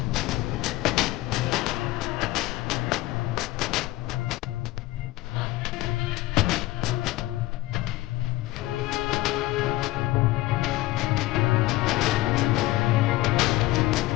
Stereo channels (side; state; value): right; quieter; 17.7 dB